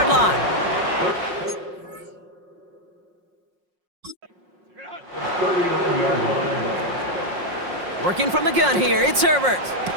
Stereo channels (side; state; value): left; late; 5.5 ms